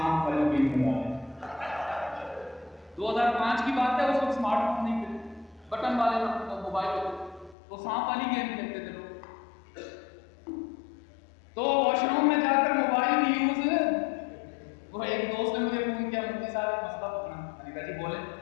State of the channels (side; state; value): right; drops out; at 7.6 s